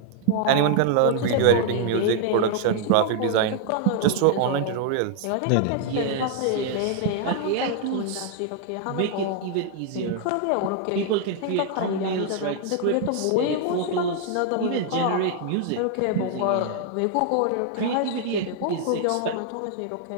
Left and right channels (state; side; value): different; both; correlation 0.00